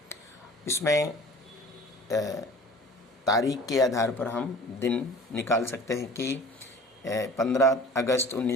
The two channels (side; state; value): both; normal; correlation 0.44